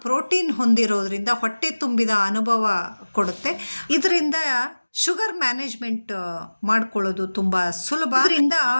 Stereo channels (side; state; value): both; inverted; correlation -1.00